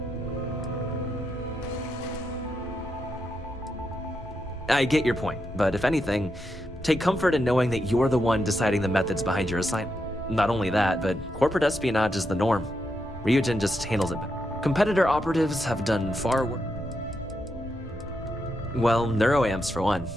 I get your point, but if anything, take comfort in knowing that you're the one deciding the methods behind your assignment. Not only that, but corporate espionage is the norm. Ryujin just handles it better. Competitor operatives have done far worse. Well, neuroamps for one.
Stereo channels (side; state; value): both; normal; correlation 0.83